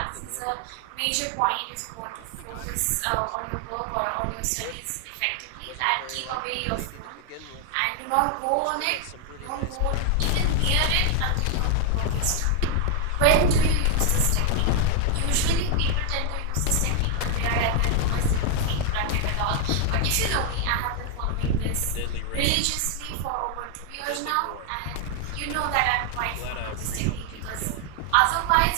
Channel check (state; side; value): different; both; correlation 0.00